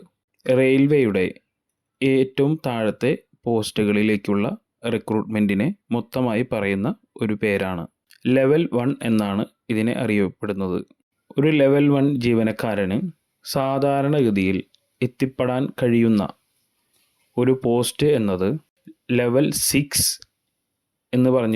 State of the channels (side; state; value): both; identical; correlation 1.00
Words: റെയിൽവേയുടെ ഏറ്റവും താഴത്തെ പോസ്റ്റുകളിലേക്കുള്ള റിക്രൂട്ട്മെൻറ്റിനെ മൊത്തമായി പറയുന്ന ഒരു പേരാണ്. ലെവൽ 1 എന്നാണ് ഇതിനെ അറിയപ്പെടുന്നത്. ഒരു ലെവൽ 1 ജീവനക്കാരന് സാധാരണഗതിയിൽ എത്തിപ്പെടാൻ കഴിയുന്ന ഒരു പോസ്റ്റ് എന്നത് ലെവൽ 6 എന്ന്